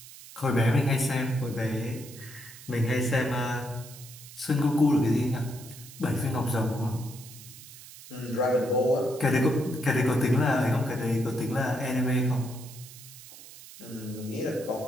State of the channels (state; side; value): noise; right; hiss, 17 dB below the sound